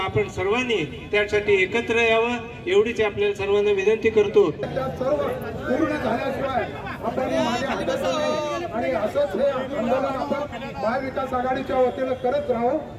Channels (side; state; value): both; identical; correlation 1.00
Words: सर्वांनी त्यासाठी एकत्र यावं एवढीच आपल्याला सर्वांना विनंती करतो. पूर्ण झाल्याशिवाय आणि असंच हे आंदोलन आपण महाविकास आघाडीच्या वतीनं करत राहू.